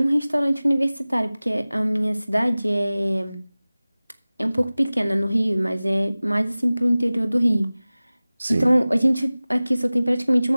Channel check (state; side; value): inverted; both; correlation -0.98